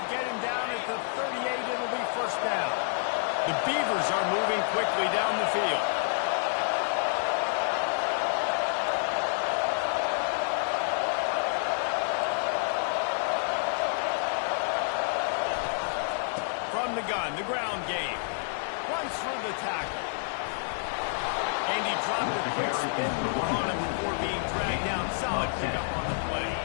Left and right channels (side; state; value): right; silent; digital silence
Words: get him down at the 38. It'll be 1st down. The Beavers are moving quickly down the field. From the gun, the ground game. Runs through the tackle. And he dropped a quick spin move on him before being dragged down. Solid pickup on the play.